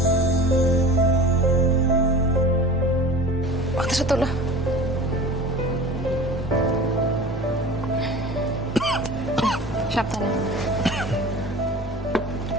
মাথাটা তোলো। সাবধানে।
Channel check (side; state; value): both; normal; correlation 0.38